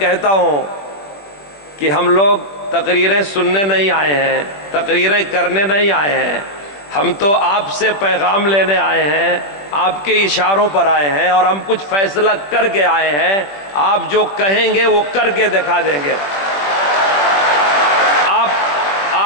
ہوں کہ ہم لوگ تقریریں سننے نہیں آئے ہیں، تقریریں کرنے نہیں آئے ہیں، ہم تو آپ سے پیغام لینے آئے ہیں، آپ کے اشاروں پر آئے ہیں، اور ہم کچھ فیصلہ کر کے آئے ہیں۔ آپ جو کہیں گے وہ کر کے دکھا دیں گے۔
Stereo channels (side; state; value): right; late; 20 ms